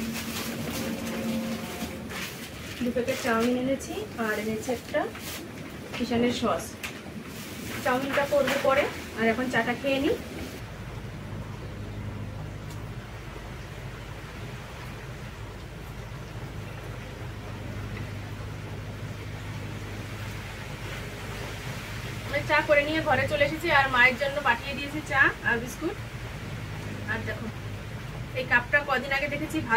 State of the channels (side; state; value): both; identical; correlation 1.00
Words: 2 প্যাকেট চাউমিন এনেছি, আর এনেছি একটা কিষানের সস। চাউমিনটা করবো পরে, আর এখন চাটা খেয়ে নিই। চা করে নিয়ে ঘরে চলে এসেছি, আর মায়ের জন্য পাঠিয়ে দিয়েছি চা আর বিস্কুট। আর দেখো এই কাপটা কদিন আগে দেখেছি